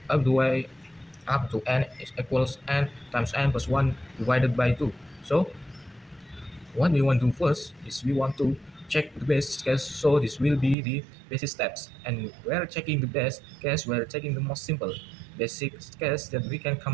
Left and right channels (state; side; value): drops out; left; at 10.8 s